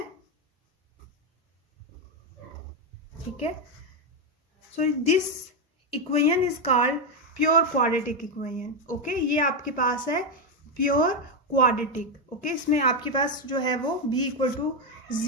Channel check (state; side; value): normal; both; correlation 0.06